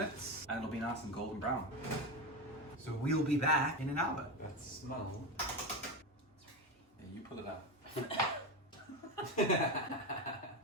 and it'll be nice and golden brown. So we'll be back in an hour. That smell. Yeah, you pull it up.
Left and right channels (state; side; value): normal; both; correlation 0.17